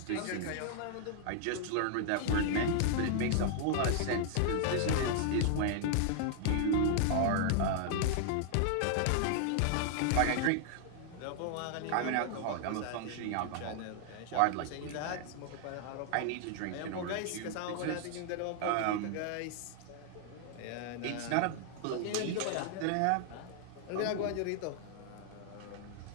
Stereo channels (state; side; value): different; both; correlation 0.00